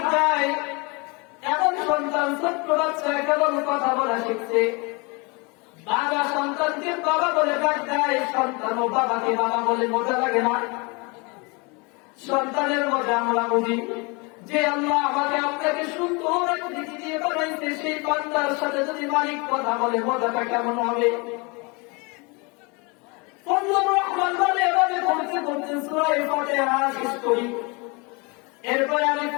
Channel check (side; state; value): right; quieter; 29.2 dB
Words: দেয়, এমন সন্তান ছোট্ট বাচ্চা কেবল কথা বলা শিখছে, বাবা সন্তানকে বাবা বলে ডাক দেয়, সন্তান ও বাবাকে বাবা বলে, মজা লাগে না? সন্তানের মজা আমরা বুঝি যে আল্লাহ আমাকে আপনাকে সুন্দর আকৃতি দিয়ে বানাইছে, সেই বান্দার সাথে যদি মালিক কথা বলে মজাটা কেমন হবে? ফজলুর রহমান বলে, এভাবে পড়তে পড়তে সূরা ফাতিহা শেষ করি, এরপরে আমি